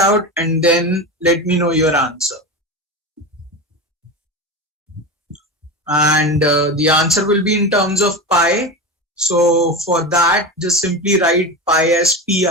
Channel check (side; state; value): both; normal; correlation 0.23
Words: and then let me know your answer. And the answer will be in terms of pi. So for that, just simply write pi as